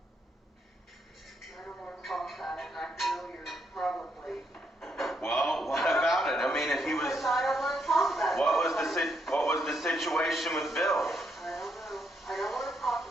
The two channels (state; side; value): normal; both; correlation 0.77